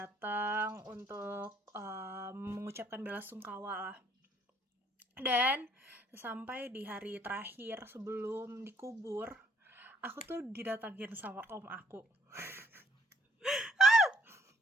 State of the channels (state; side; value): normal; both; correlation 0.65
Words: untuk mengucapkan bela sungkawa lah. Dan sampai di hari terakhir sebelum dikubur, aku tuh didatangin sama om aku.